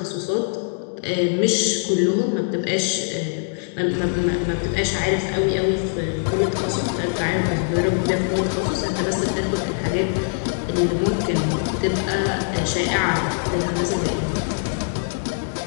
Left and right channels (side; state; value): right; silent; digital silence